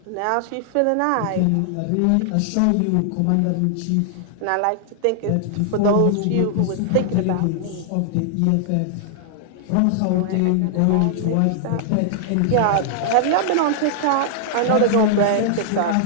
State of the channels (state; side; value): different; both; correlation -0.01